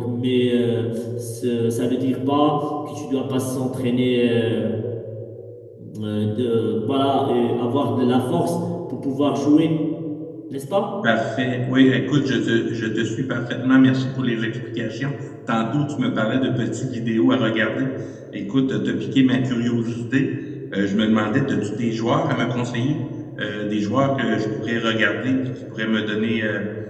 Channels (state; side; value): identical; both; correlation 1.00